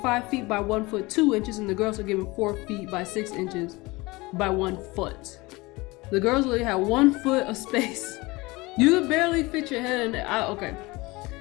feet by 1 foot 2 inches, and the girls were given 4 feet by 6 inches by 1 foot. The girls only had 1 foot of space. You could barely fit your head in there. Okay.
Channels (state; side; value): quieter; right; 22.8 dB